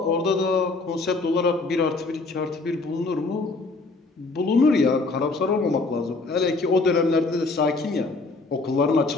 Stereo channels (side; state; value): right; quieter; 3.5 dB